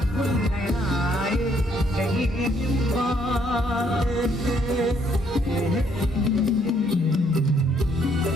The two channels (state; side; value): normal; both; correlation 0.69